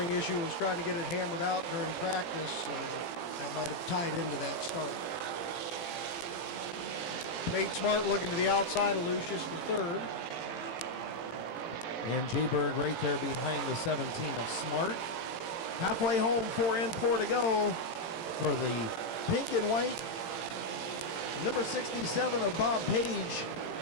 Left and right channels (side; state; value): right; late; 18 ms